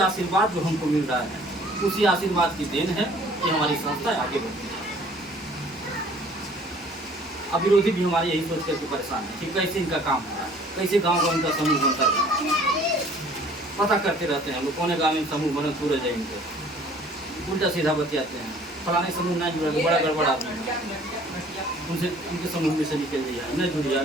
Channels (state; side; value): normal; both; correlation 0.54